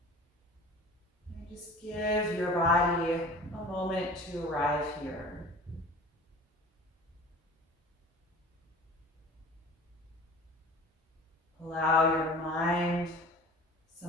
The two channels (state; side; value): normal; both; correlation 0.41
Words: And just give your body a moment to arrive here. Allow your mind